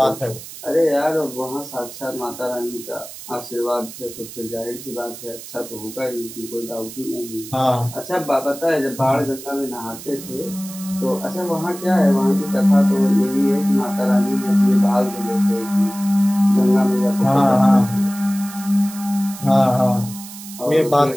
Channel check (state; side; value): noise; right; hiss, 14 dB below the sound